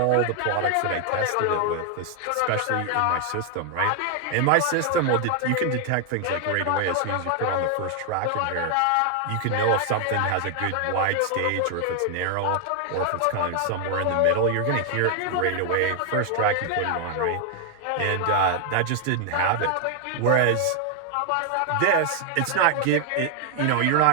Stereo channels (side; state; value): both; different; correlation 0.00